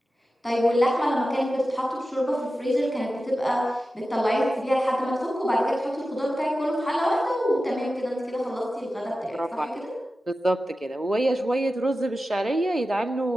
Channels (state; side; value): normal; both; correlation 0.93